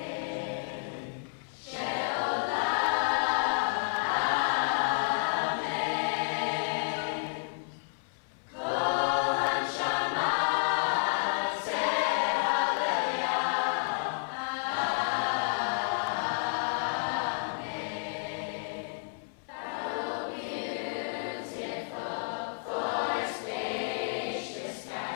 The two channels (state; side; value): silent; right; 57 dB below the other